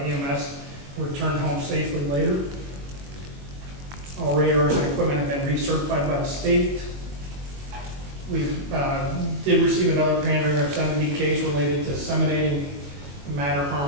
returned home safely later. All radars and equipment have been recertified by the state. We did receive another pandering obscenity case related to disseminating matter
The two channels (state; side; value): late; left; 21 ms